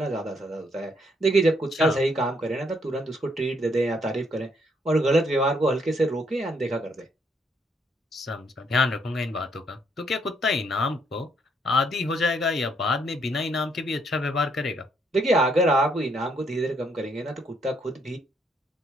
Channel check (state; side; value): normal; both; correlation 0.71